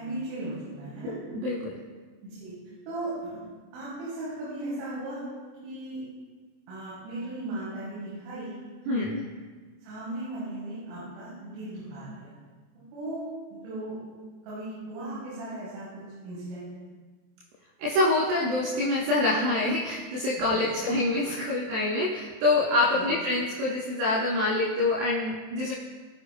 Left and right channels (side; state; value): left; late; 28 ms